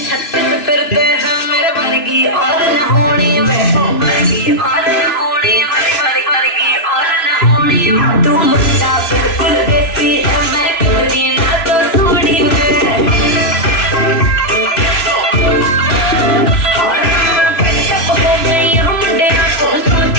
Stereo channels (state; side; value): late; right; 3.0 ms